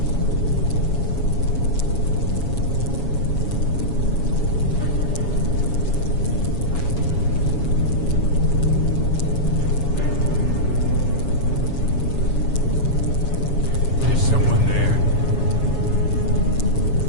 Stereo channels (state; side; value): late; right; 7.2 ms